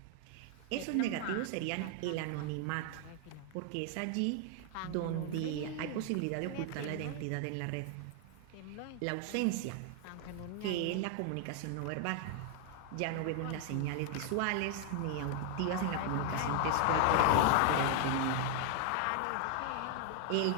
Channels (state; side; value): different; both; correlation 0.00